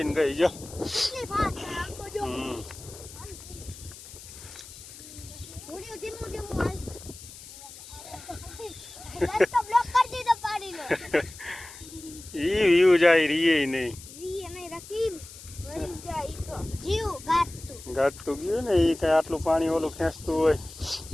ગઈ જો. ઈ વ્યૂ જાય રીએ નહીં. ગાતું ગયું ને એ કઈ આટલું પાણી ઓલું ખેંચતું હોય.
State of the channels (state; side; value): noise; left; hiss, 16 dB below the sound